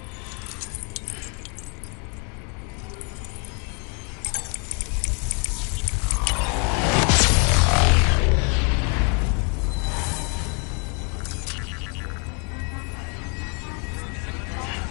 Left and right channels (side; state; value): right; quieter; 36.2 dB